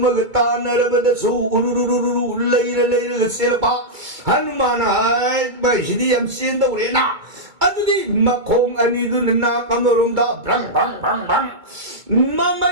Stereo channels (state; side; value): late; left; 2.2 ms